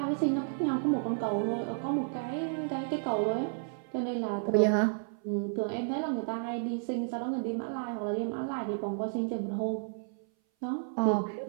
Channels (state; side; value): silent; left; 57 dB below the other